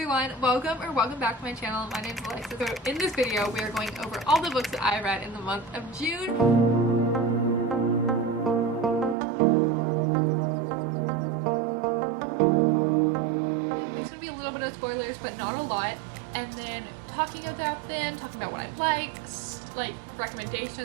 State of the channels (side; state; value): left; drops out; at 9.2 s